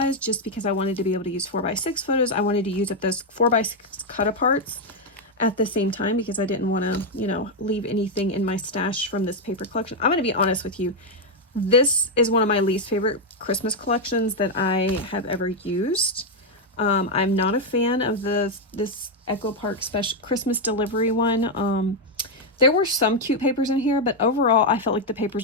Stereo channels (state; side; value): normal; both; correlation 0.02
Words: just because I wanted to be able to use 4x6 photos. I wanted to use up those 4x6 cut aparts at the same time because I didn't want to, leave anything in my stash from this paper collection. I'm going to be honest with you. This is one of my least favorite Christmas collections that I have ever used. I'm not a fan of this Echo Park special Christmas delivery one. There were some cute papers in here, but overall I felt like the